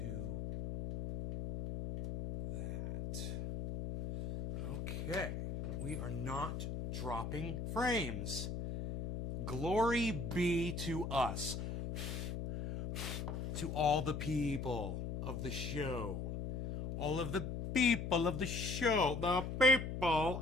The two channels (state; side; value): noise; left; hum, 3 dB below the sound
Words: that. Okay. We are not dropping frames. Glory be to us. To all the people of the show. All of the people of the show. The people